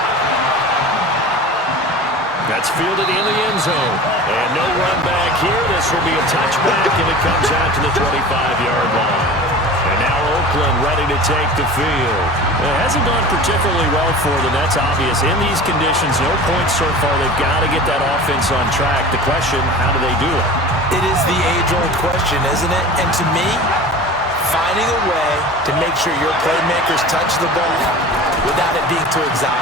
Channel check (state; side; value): normal; both; correlation 0.37